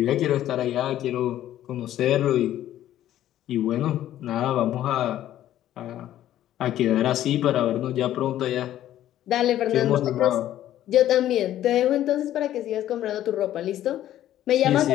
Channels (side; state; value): right; quieter; 12.5 dB